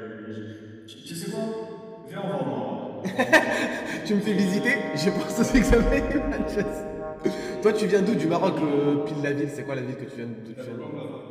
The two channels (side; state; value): both; identical; correlation 1.00